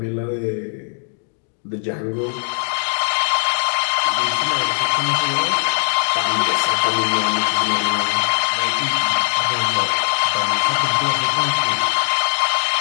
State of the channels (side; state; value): right; silent; digital silence